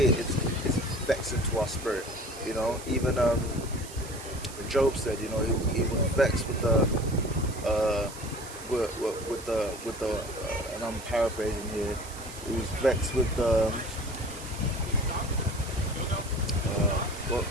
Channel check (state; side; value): noise; right; hiss, 15 dB below the sound